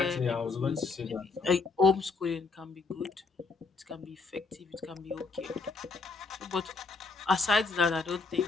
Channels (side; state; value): right; quieter; 4.3 dB